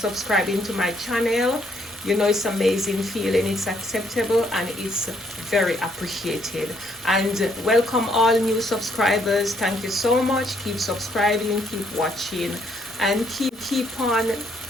to my channel. You know, it's amazing feeling, it's acceptable, and it's very appreciated. And welcome all new subscribers. Thank you so much. Keep subscribing, keep watching, and keep on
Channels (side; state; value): both; normal; correlation 0.69